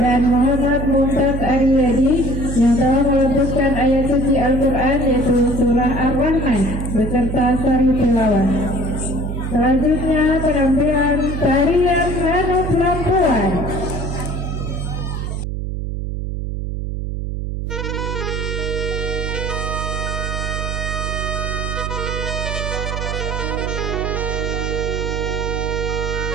pembacaan Muhammad Mumtaz Aryadi yang telah melepaskan ayat suci Al-Quran yaitu surah Ar-Rahman beserta sari tilawah. Selanjutnya penampilan tarian Hanuf Lampuan.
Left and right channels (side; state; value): right; noise; hum, 3 dB below the sound